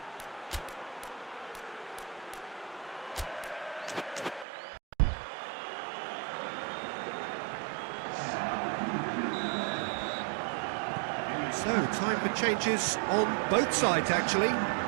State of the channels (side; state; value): left; drops out; at 4.5 s